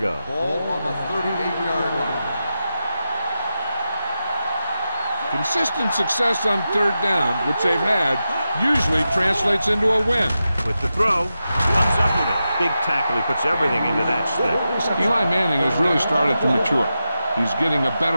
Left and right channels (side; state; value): both; inverted; correlation -0.90